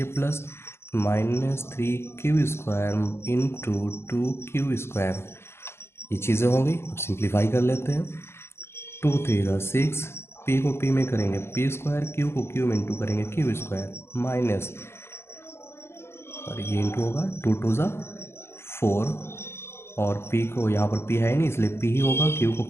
plus, minus 3q square into 2q square, ये चीज़ें हो गई। अब सिंप्लीफाई कर लेते हैं, 2 3 6, p को p में करेंगे p स्क्वायर, q को q में इंटू करेंगे q स्क्वायर, माइनस, और ये इंटू होगा 2 2 4, और p को यहाँ पर p है नहीं इसलिए p ही होगा, q को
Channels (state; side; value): late; right; 0.12 ms